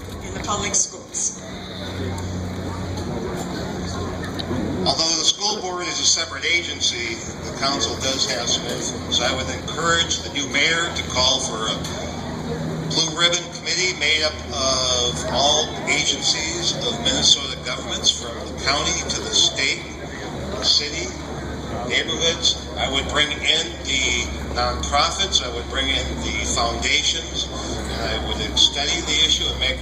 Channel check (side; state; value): both; identical; correlation 1.00